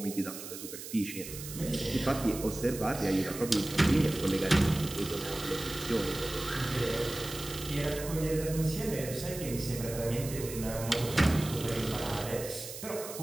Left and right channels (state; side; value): noise; right; hiss, 10 dB below the sound